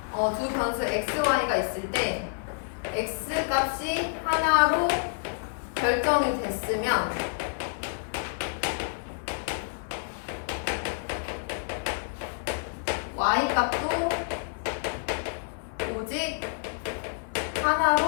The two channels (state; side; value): silent; right; 59 dB below the other